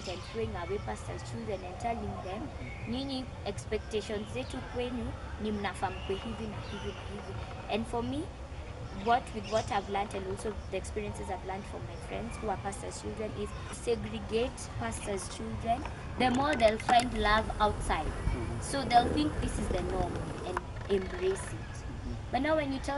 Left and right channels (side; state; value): both; identical; correlation 1.00